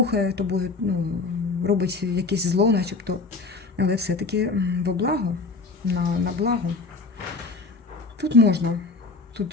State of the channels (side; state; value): right; quieter; 3.9 dB